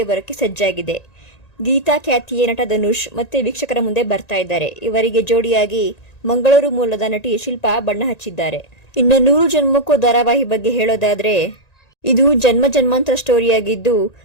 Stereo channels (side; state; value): right; late; 1.9 ms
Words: ಬರೋಕ್ಕೆ ಸಜ್ಜಾಗಿದೆ. ಗೀತಾ ಖ್ಯಾತಿಯ ನಟ ಧನುಷ್ ಮತ್ತೆ ವೀಕ್ಷಕರ ಮುಂದೆ ಬರ್ತಾ ಇದ್ದಾರೆ. ಇವರಿಗೆ ಜೋಡಿಯಾಗಿ ಮಂಗಳೂರು ಮೂಲದ ನಟಿ ಶಿಲ್ಪಾ ಬಣ್ಣ ಹಚ್ಚಿದ್ದಾರೆ. ಇನ್ನು ನೂರು ಜನ್ಮಕ್ಕೂ ಧಾರಾವಾಹಿ ಬಗ್ಗೆ ಹೇಳೋದಾದ್ರೆ ಇದು ಜನ್ಮಾಂತರ ಸ್ಟೋರಿಯಾಗಿದ್ದು